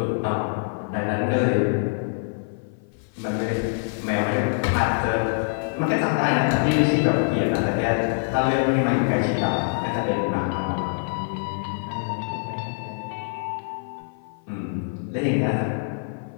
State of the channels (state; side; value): silent; right; 55 dB below the other